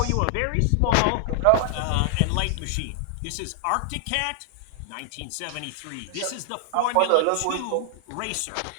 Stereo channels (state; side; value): different; both; correlation 0.00